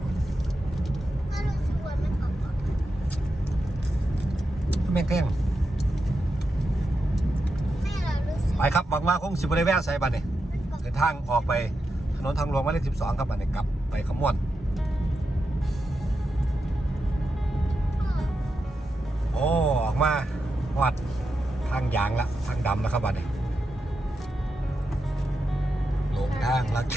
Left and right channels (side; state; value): both; normal; correlation 0.88